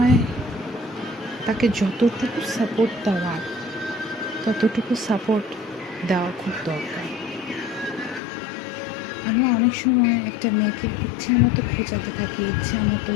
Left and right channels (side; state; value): right; drops out; at 8.2 s